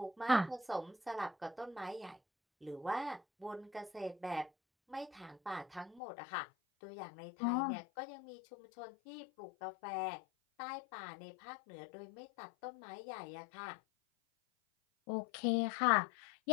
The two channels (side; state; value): right; drops out; at 6.0 s